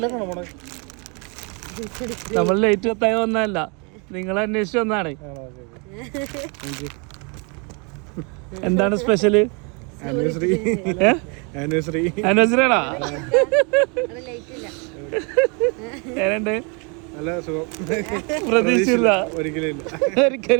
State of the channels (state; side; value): quieter; left; 33.6 dB